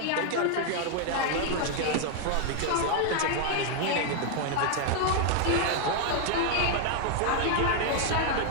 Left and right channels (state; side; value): different; both; correlation 0.00